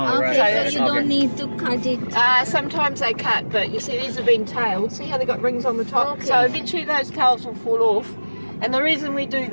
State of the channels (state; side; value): inverted; both; correlation -1.00